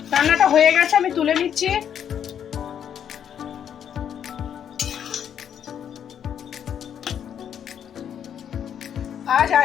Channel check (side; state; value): right; quieter; 8.9 dB